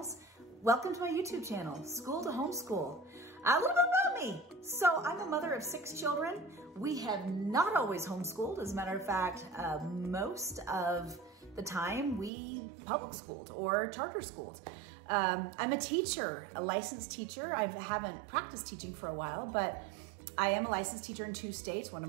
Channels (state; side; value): drops out; left; at 12.3 s